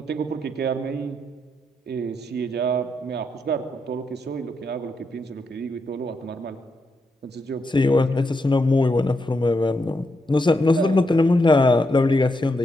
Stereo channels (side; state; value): both; normal; correlation 0.82